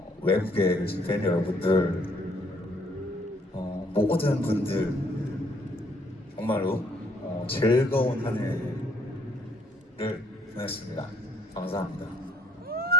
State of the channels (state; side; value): normal; both; correlation 0.66